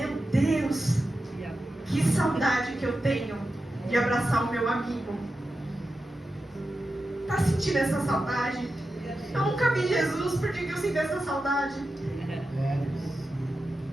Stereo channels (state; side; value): normal; both; correlation 0.91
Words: Deus, que saudade que eu tenho de abraçar o meu amigo. Tá sentindo essa saudade? Eu nunca vi Jesus, por que eu sinto essa saudade?